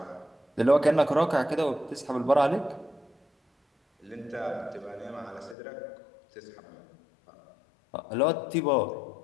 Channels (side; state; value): right; drops out; at 5.6 s